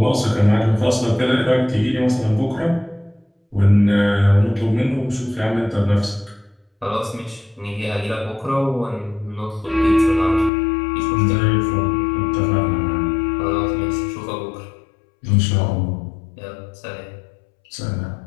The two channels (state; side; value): drops out; right; at 10.5 s